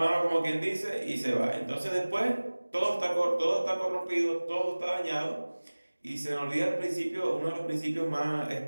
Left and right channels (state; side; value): inverted; both; correlation -1.00